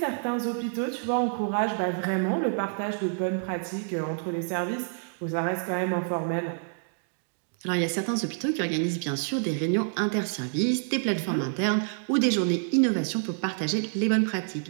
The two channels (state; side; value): silent; left; digital silence